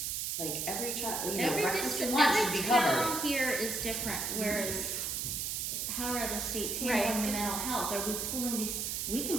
like, every child, you know, breakfast and lunch should be covered. Every town here is different, whereas how are other states handling the mental health? Are we pulling these we can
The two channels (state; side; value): noise; right; hiss, 1 dB below the sound